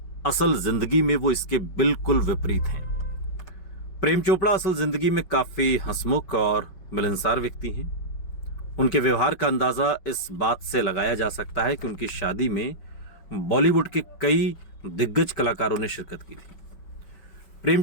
असल जिंदगी में वो इसके बिल्कुल विपरीत हैं। प्रेम चोपड़ा असल जिंदगी में काफी हंसमुख और मिलनसार व्यक्ति हैं। उनके व्यवहार का अंदाजा इस बात से लगाया जा सकता है कि उनकी शादी में बॉलीवुड के कई दिग्गज कलाकारों ने शिरकत की थी। प्रेम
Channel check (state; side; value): late; right; 5.4 ms